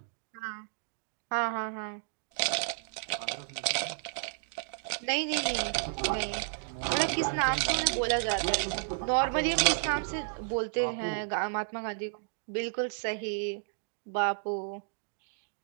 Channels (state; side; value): silent; left; digital silence